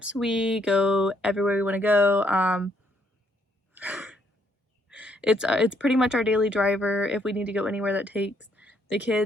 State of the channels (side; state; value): both; normal; correlation 0.71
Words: we go everywhere we want to go. It's pretty much our daily driver. If we need to go anywhere that takes the